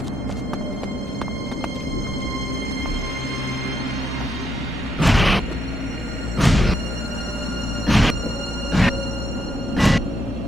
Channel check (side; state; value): both; normal; correlation 0.75